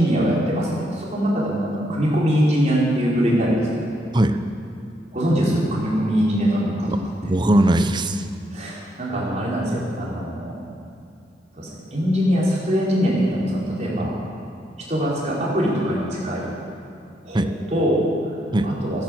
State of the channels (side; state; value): both; normal; correlation 0.77